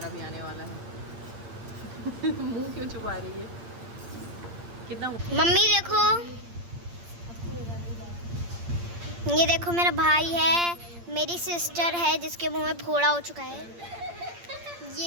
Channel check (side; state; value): left; late; 8.7 ms